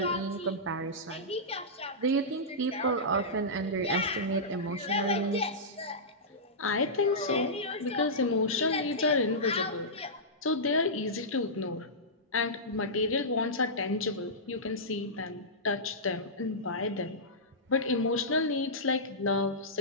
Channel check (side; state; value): both; normal; correlation -0.15